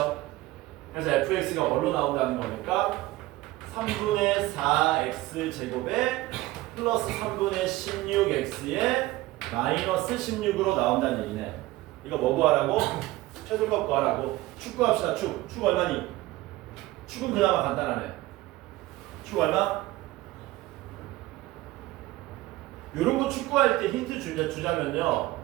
그래서 fx가 뭘로 나온다는 거니까 3분의 4x 제곱에 플러스 3분의 16x에 마이너스 16으로 나온다는 얘기네. 이거 뭐 구하라고? 최소값 구하라고. 축 구합시다. 축. 축 얼마니? 축은 그나마 간단하네. 축 얼마? 요런 거 축구할 때 힌트 주자면요.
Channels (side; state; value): left; quieter; 18.1 dB